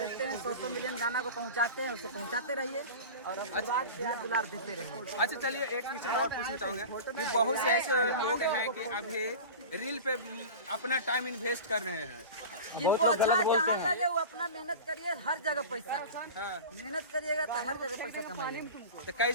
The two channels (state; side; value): inverted; both; correlation -0.32